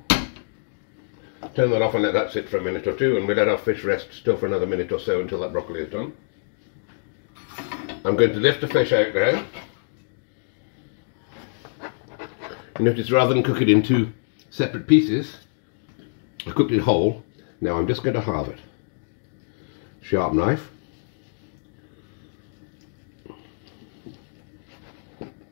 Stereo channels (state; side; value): silent; right; digital silence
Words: Turn that off and let that sit for a minute or two, and we'll let our fish rest still for another minute or so until that broccoli is done. I'm going to lift the fish out now. Notice rather than cook it in two separate pieces, I cooked it whole. Now I'm just going to halve it. Sharp knife.